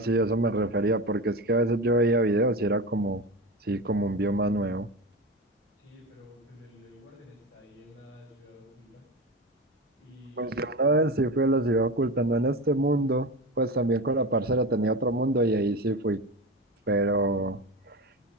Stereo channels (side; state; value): both; normal; correlation 0.23